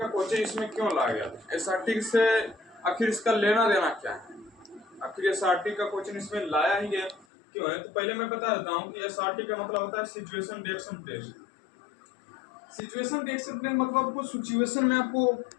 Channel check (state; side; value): drops out; right; at 7.2 s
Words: क्वेश्चन इसमें क्यों लाया गया था, SRT से आखिर इसका लेना देना क्या है, आखिर SRT का क्वेश्चन इसमें लाया ही गया क्यों है। तो पहले मैं बता देता हूँ कि SRT का मतलब होता है situation reaction test. Situation reaction test मतलब कुछ सिचुएशन में आपको